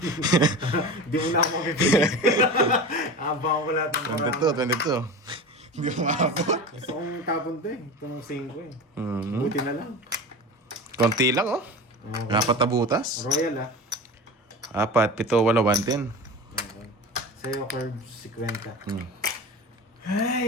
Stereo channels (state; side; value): normal; both; correlation 0.30